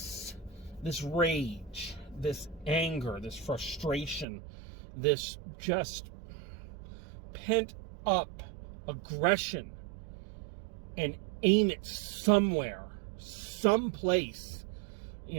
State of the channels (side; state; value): left; drops out; at 4.2 s